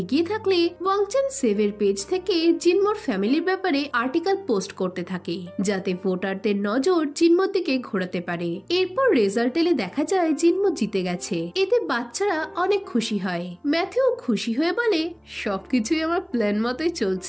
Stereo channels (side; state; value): both; identical; correlation 1.00